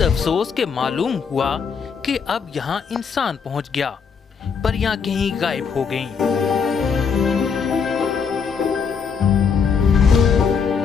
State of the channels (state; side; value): quieter; right; 6.2 dB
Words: अफसोस के मालूम हुआ कि अब यहाँ इंसान पहुँच गया, परियां कहीं गायब हो गईं।